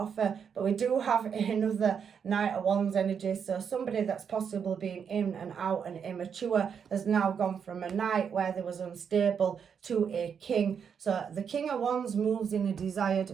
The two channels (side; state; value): left; quieter; 7.1 dB